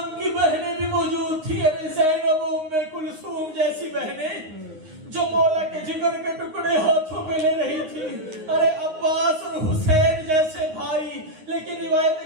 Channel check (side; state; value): left; late; 9.6 ms